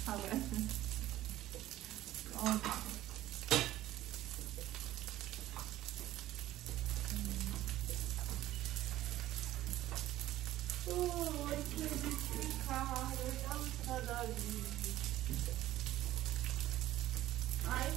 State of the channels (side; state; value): left; quieter; 14.6 dB